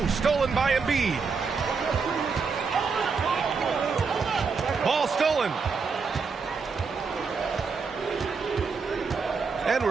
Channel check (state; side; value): quieter; left; 5.1 dB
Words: stolen by Embiid. Ball stolen. And